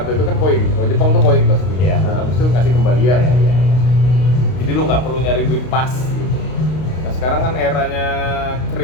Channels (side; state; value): right; late; 32 ms